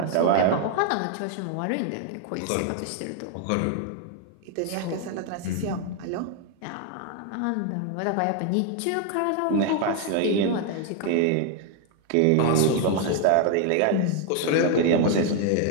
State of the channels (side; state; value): both; different; correlation 0.00